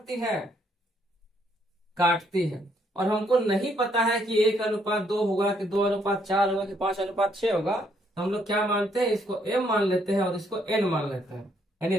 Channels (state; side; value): normal; both; correlation 0.70